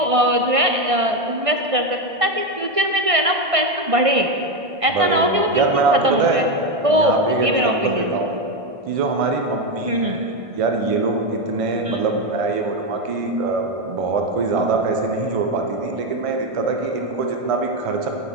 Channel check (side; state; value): left; late; 1.6 ms